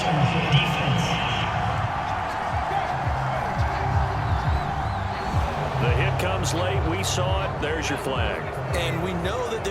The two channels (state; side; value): identical; both; correlation 1.00